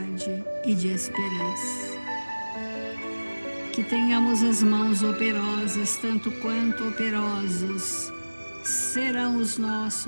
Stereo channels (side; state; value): both; inverted; correlation -1.00